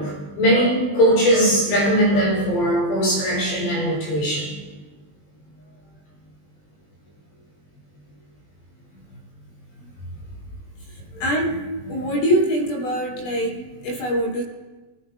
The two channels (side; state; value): right; late; 20 ms